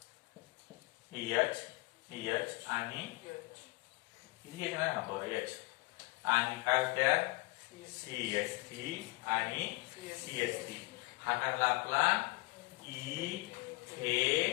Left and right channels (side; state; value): right; quieter; 24.3 dB